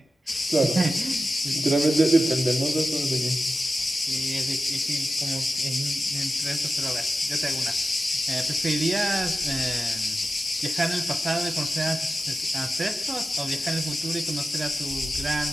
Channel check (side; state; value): both; normal; correlation 0.93